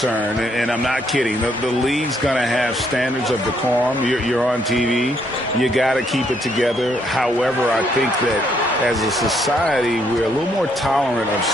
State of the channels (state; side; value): normal; both; correlation 0.71